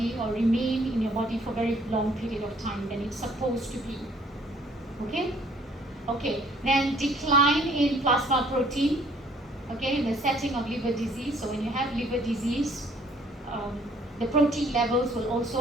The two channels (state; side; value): normal; both; correlation 0.60